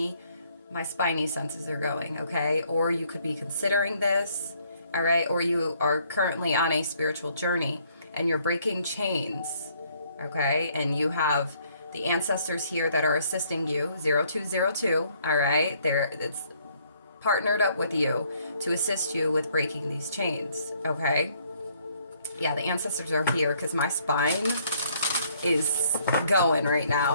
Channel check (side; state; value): both; inverted; correlation -0.66